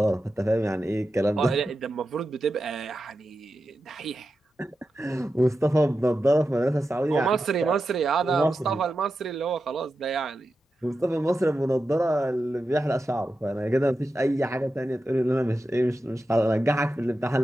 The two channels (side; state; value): both; normal; correlation 0.91